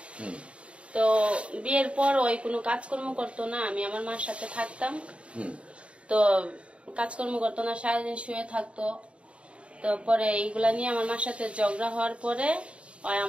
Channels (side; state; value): left; late; 0.060 ms